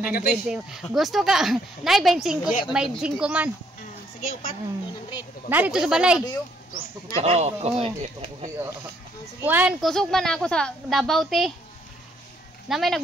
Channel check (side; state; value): both; normal; correlation 0.68